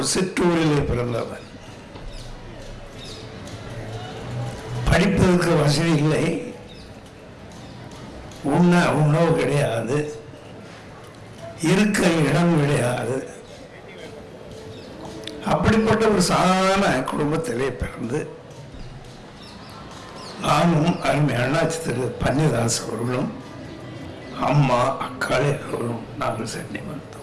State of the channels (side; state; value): both; identical; correlation 1.00